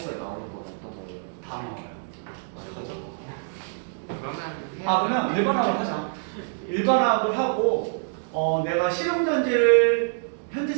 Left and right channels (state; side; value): silent; left; digital silence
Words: 나오는 건 어떤 거예요? 다 나와요. 어떡하죠? 그러면 그러면 일반화학을 하자. 일반화학을 하고 내가 실용전지를